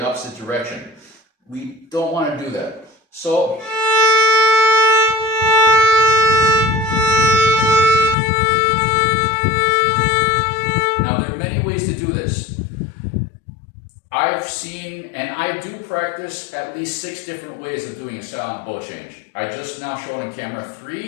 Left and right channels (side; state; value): right; drops out; at 8.2 s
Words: opposite direction. We don't want to do that. So, now there are many ways to do this. I've seen, and I do practice at least 6 different ways of doing a silent bow change. I just now showed on camera